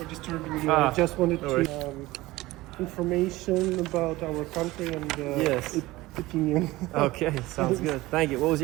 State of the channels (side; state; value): left; quieter; 18.9 dB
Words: disturbing you. I just wanted to information about our country and yes. opinion. Okay, sounds good. Thank you. What was